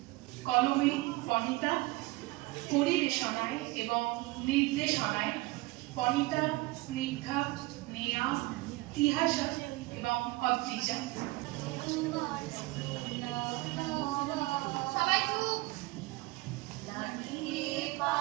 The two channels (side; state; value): left; quieter; 21.5 dB